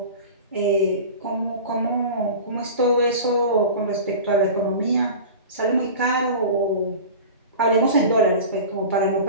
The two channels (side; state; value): both; inverted; correlation -0.34